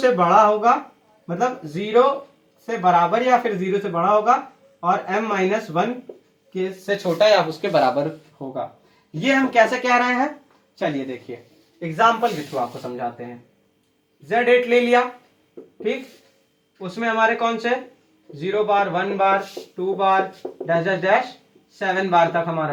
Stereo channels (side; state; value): both; identical; correlation 1.00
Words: बड़ा होगा, मतलब 0 से बराबर या फिर 0 से बड़ा होगा, और m-1 के से छोटा या उसके बराबर होगा। ये हम कैसे कह रहे हैं, चलिए देखिए, एग्जाम्पल के थ्रू आपको समझाते हैं। Z8 ले लिया, ठीक, उसमें हमारे कौन से 0 बार, 1 बार, 2 बार, डैश डैश डैश 7 बार तक हमारा